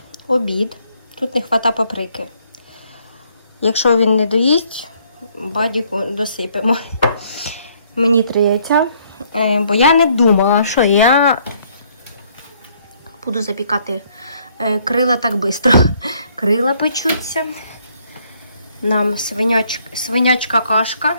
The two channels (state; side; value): inverted; both; correlation -0.66